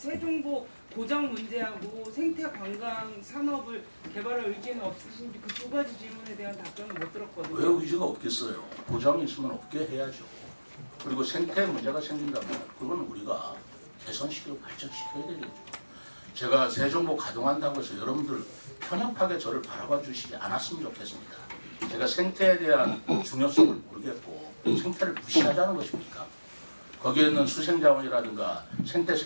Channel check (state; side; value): inverted; both; correlation -1.00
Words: 고장 문제하고 생태 관광 산업을 개발할 의지는 없으신지 그 두 가지 질문에 대한 답변을 못 들었거든요. 왜 의지가 없겠어요? 고장이 있으면 없게 해야죠. 그리고 생태 문제가 생긴다면 그건 우리가 개선시키고 발전시켜야 되겠죠. 제가 세종보 가동한다고 해서 여러분들 편협하게 저를 바라봐 주시지 않았으면 좋겠습니다. 제가 생태에 대한 중요성을 모르겠고 생태를 무시하자는 것입니까? 거기에 있는 수생자원이라든가 생태